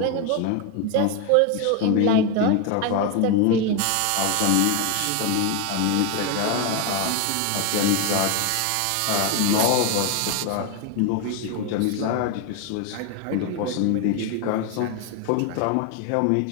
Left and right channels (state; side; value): different; both; correlation 0.02